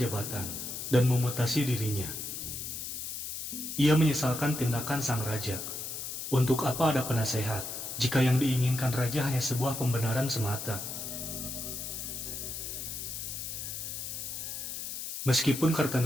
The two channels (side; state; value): left; noise; hiss, 6 dB below the sound